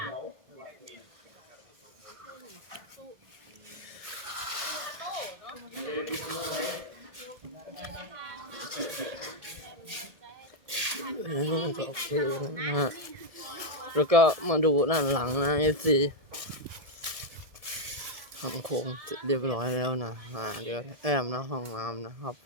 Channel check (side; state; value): left; late; 1.6 ms